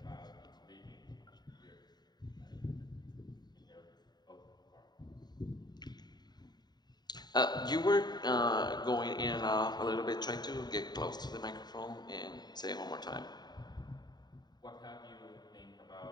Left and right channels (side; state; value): right; late; 0.20 ms